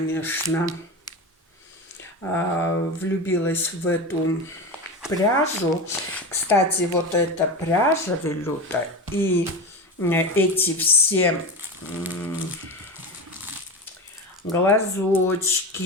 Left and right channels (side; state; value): both; normal; correlation 0.23